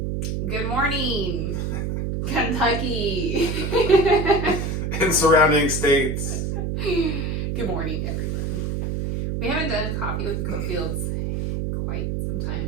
Good morning, Kentucky. In surrounding states. Good morning, everyone. We haven't done coffee with the Cofields in quite some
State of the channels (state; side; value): noise; right; hum, 1 dB below the sound